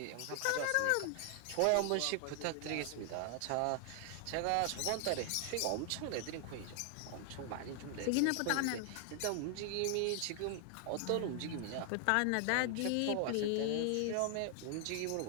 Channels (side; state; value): both; different; correlation 0.00